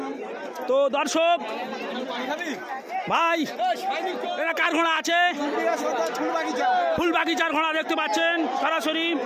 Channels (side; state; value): both; identical; correlation 1.00